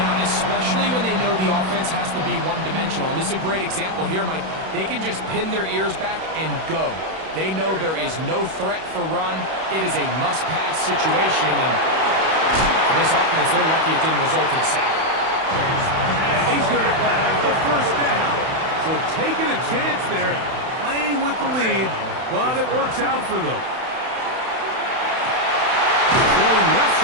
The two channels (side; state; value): left; late; 31 ms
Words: especially when they know the offense has to be one-dimensional. And this is a great example here, Mike. They can just pin their ears back and go. They know there is no threat for run. It is a must-pass situation, and for this offense, they're lucky it didn't result in a sack. And he's going to have the first down. So taking a chance there, playing with the lead, but it works out for them. Going left